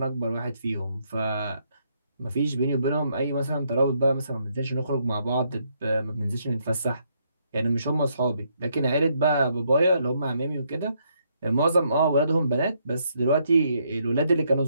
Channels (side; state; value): both; inverted; correlation -0.74